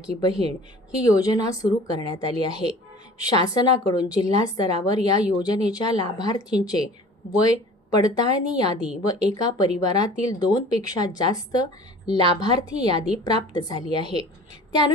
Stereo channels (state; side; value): normal; both; correlation 0.44